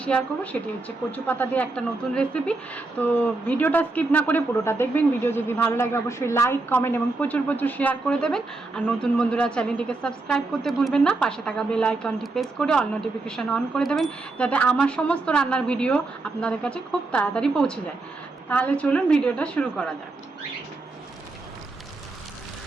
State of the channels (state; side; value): quieter; left; 3.3 dB